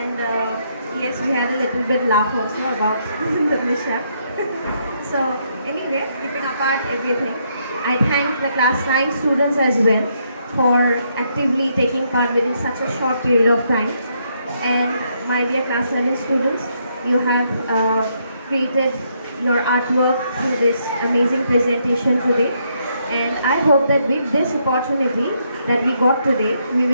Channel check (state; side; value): inverted; both; correlation -0.75